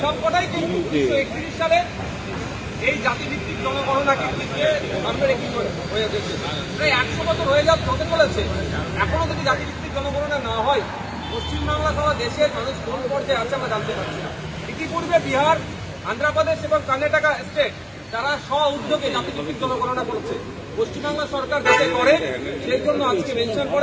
সবকটাই কিন্তু 1931 সালে এই জাতিভিত্তিক জনগণনাকে সামনে রেখে হয়ে গেছে। প্রায় 100 বছর হতে চলেছে, এখনো যদি জাতিভিত্তিক জনগণনা না হয় পশ্চিমবাংলা সহ দেশের মানুষ কোন পর্যায়ে আছে আমরা জানতে পারছি না। ইতিপূর্বে বিহার, আন্ধ্রপ্রদেশ এবং কর্ণাটকা স্টেট তারা স্ব উদ্যোগে জাতিভিত্তিক জনগণনা করেছে। পশ্চিমবাংলা সরকার যাতে করে সেই জন্য আজকে মেনশন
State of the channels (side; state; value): both; identical; correlation 1.00